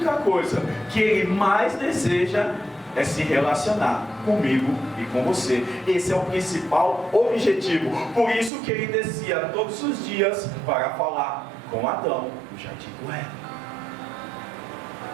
coisa que Ele mais deseja é se relacionar comigo e com você. Esse é o principal objetivo. Por isso que Ele descia todos os dias para falar com Adão no jardim do Éden.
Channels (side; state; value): left; drops out; at 8.5 s